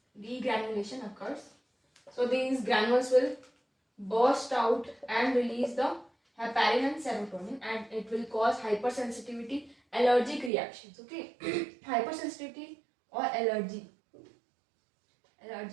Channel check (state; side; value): drops out; left; at 10.5 s